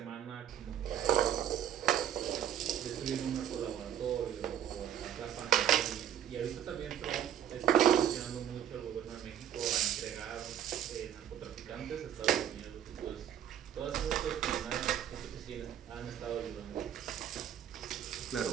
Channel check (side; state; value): left; quieter; 10.2 dB